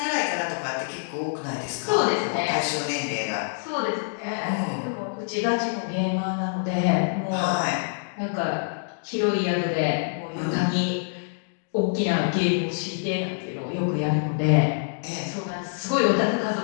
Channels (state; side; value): silent; right; digital silence